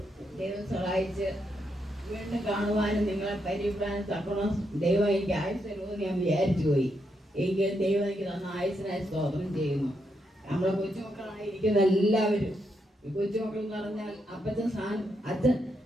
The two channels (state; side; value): normal; both; correlation 0.81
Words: ദൈവം സഹായിച്ച് വീണ്ടും കാണുവാനും നിങ്ങളെ പരിപാലനം തക്കണം. ദൈവം എനിക്ക് ആയുസ് തരുമെന്ന് ഞാൻ വിചാരിച്ചു പോയി. എങ്കിൽ ദൈവം എനിക്ക് തന്ന ആയുസിനായി സ്തോത്രം ചെയ്യുന്നു. നമ്മളെ കൊച്ചുമക്കളായിരിക്കുന്ന എല്ലാവരും, ഈ കൊച്ചുമക്കൾ എന്ന് പറഞ്ഞാൽ അച്ഛൻ